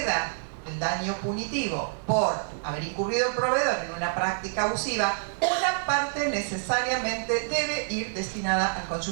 el daño punitivo por haber incurrido el proveedor en una práctica abusiva, una parte necesariamente debe ir destinada al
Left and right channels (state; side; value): silent; left; digital silence